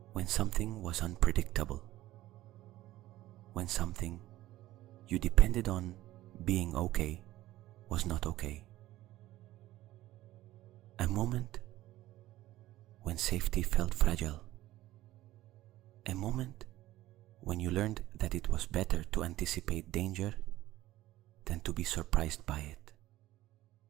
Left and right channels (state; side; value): quieter; left; 15.6 dB